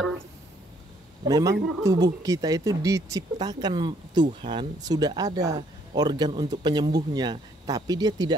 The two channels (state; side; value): normal; both; correlation 0.66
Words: tubuh kita itu diciptakan Tuhan, sudah ada organ untuk penyembuhnya, tapi dia